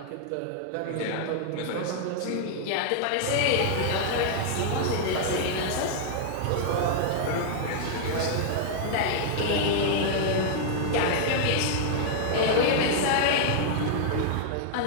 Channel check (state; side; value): different; both; correlation -0.01